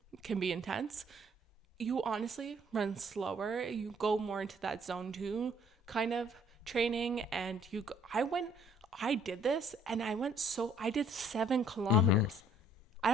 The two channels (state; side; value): normal; both; correlation 0.60